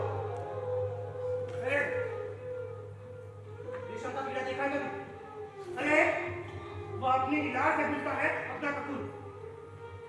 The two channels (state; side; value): identical; both; correlation 1.00